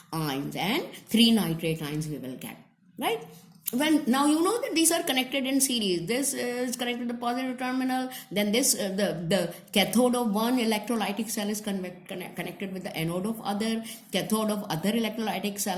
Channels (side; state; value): both; identical; correlation 1.00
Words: ions, and 3 nitrate ions we will get, right? When now you know that these are connected in series. This is connected to the positive terminal, then this the cathode of one electrolytic cell is connected with the anode of other, cathode of other electrolytic